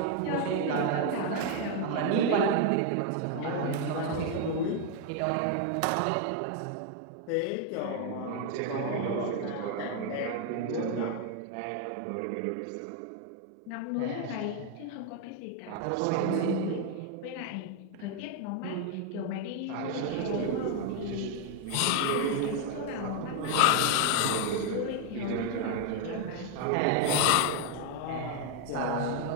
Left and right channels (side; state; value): both; different; correlation 0.01